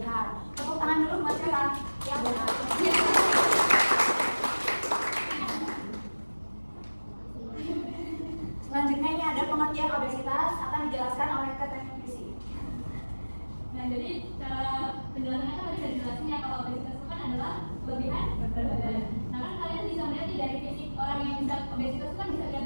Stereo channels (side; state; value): both; inverted; correlation -1.00